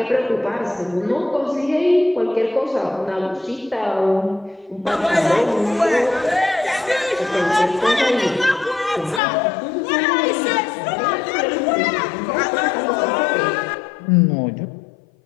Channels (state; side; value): drops out; right; at 9.2 s